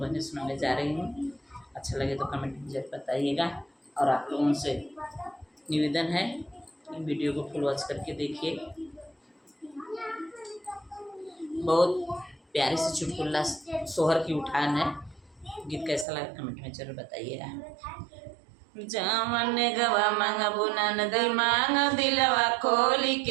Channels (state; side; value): drops out; left; at 16.1 s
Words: सुनाने जा रही हूँ। अच्छा लगे तो कमेंट में जरूर बताइएगा और आप लोगों से निवेदन है कि वीडियो को फुल वॉच करके देखिए। बहुत प्यारे से चुटकुला सोहर की उठान है। गीत कैसा लगा कमेंट में जरूर बताइएगा। जावन गवा मंगबुना नदी मांग दिलवा खोल